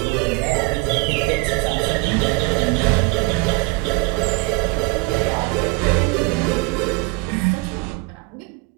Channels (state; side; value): quieter; left; 25.1 dB